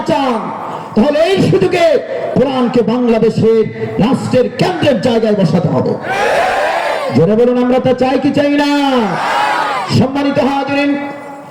চান তাহলে এই সুযোগে কোরআনকে বাংলাদেশের রাষ্ট্রের কেন্দ্রের জায়গায় বসাতে হবে। জোরে বলুন, আমরা তা চাই কি চাই না? সম্মানিত হাজিরিন,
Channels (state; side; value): identical; both; correlation 1.00